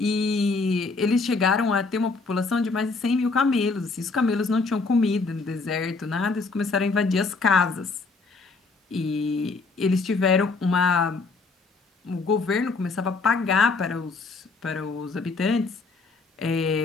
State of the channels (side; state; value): right; quieter; 4.0 dB